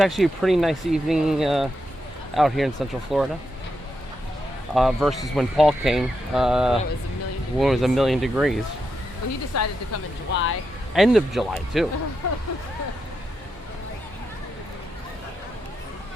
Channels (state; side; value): normal; both; correlation 0.84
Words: a pretty nice evening out here in Central Florida. Versus when Paul came, when it was 1,000,000 degrees. Well, he decided to come in July. End of July, too.